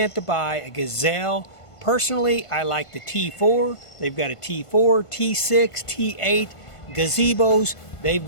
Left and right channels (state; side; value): late; right; 1.5 ms